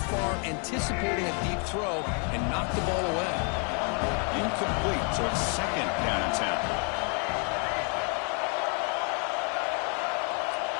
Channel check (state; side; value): quieter; right; 37.6 dB